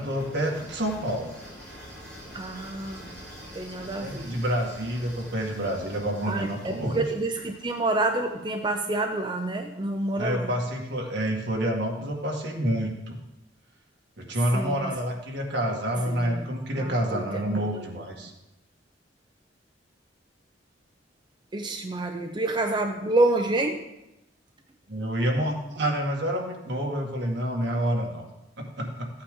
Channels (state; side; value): normal; both; correlation 0.49